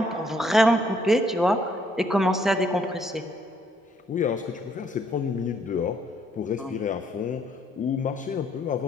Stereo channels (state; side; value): normal; both; correlation 0.68